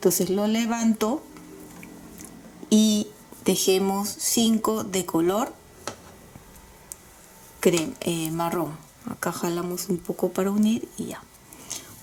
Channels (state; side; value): identical; both; correlation 1.00